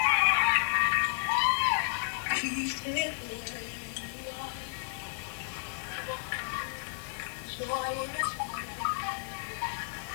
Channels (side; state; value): right; silent; digital silence